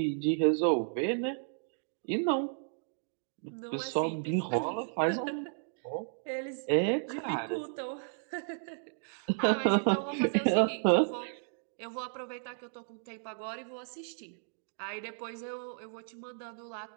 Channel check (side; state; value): left; silent; digital silence